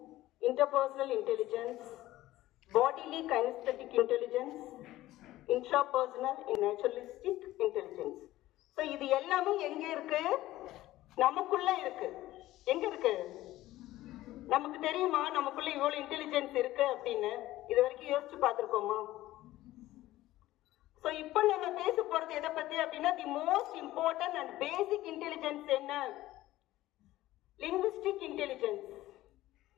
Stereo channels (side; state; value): right; quieter; 16.0 dB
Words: interpersonal intelligence, bodily kinesthetic intelligence, intrapersonal and naturalistic intelligence. So இது எல்லாமே எங்க இருக்கு? நமக்குள்ள இருக்கு. எங்க இருக்கு? நமக்கு தெரியுமா நமக்குள்ள இவ்வளவு இன்டெலிஜென்ஸ் இருக்கு அப்படின்னு? இது வரைக்கும் யோசிச்சு பார்த்திருக்கோமா? சோ இப்போ நம்ம பேச போறது எதை பத்தி அப்படின்னா the most important and basic intelligence என்ன? Linguistic intelligence.